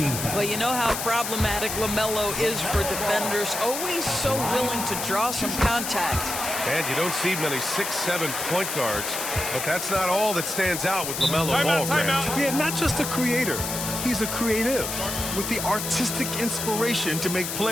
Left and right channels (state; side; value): noise; left; hiss, 4 dB below the sound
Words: Well, you know how problematic LaMelo is for defenders. Always so willing to draw some contact. And you don't see many 6'7" point guards, but that's not all that stands out with LaMelo Ball. Yeah, not just a creator. He's a creative with the artistic inspiration to make